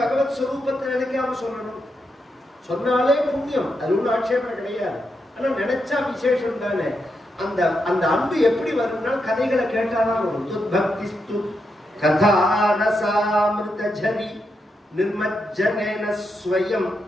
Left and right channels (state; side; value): normal; both; correlation 0.84